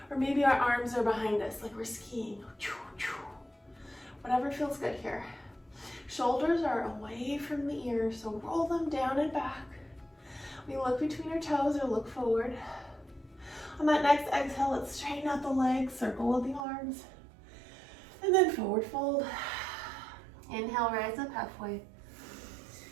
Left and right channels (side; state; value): left; drops out; at 16.6 s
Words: Or maybe our arms are behind us, like we're skiing. Whatever feels good here. Shoulders are away from the ears, so roll them down and back. We look between our toes or look forward. On that next exhale, let's straighten out the legs, circle with the arms, and then forward fold. Inhale, rise up halfway.